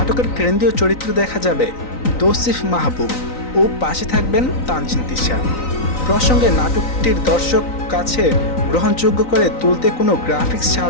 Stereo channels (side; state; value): right; late; 3.9 ms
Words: কেন্দ্রীয় চরিত্র দেখা যাবে তৌসিফ মাহবুব ও পাশে থাকবেন তানজিন তিশা। প্রসঙ্গে নাটকটির দর্শক কাছে গ্রহণযোগ্য করে তুলতে কোনো গ্রাফিক্স